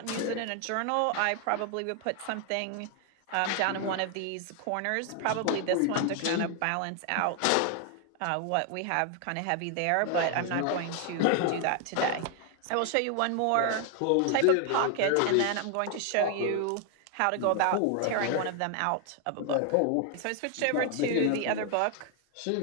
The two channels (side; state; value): both; different; correlation 0.00